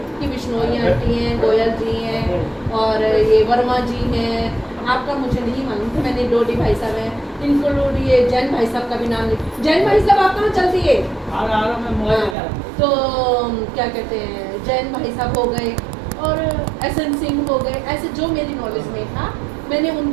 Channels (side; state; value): left; drops out; at 12.4 s